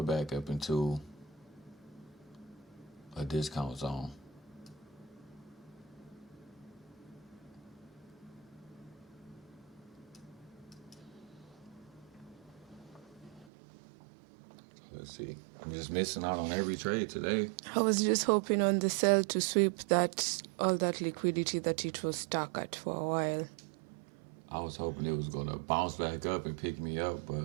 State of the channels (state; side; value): drops out; left; at 13.5 s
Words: up into a discount zone. Let's see. I'm just missing out on every trade today. I was just hoping on the sell to sweep all that liquidity that it was stuck at for a while. I was hoping it was gonna bounce back up and pick me up,